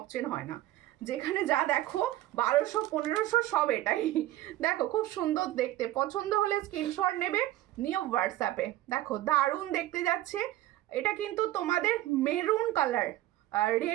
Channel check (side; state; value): left; quieter; 15.1 dB